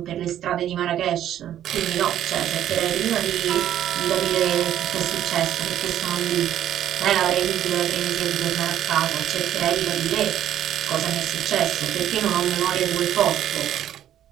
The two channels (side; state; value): left; quieter; 11.2 dB